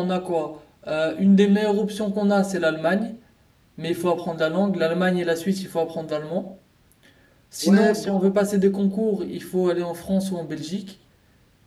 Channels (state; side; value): identical; both; correlation 1.00